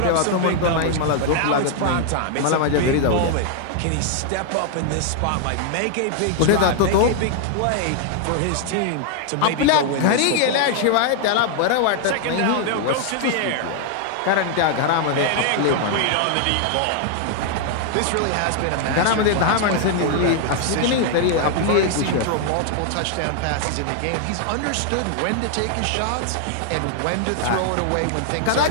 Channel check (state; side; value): different; both; correlation 0.00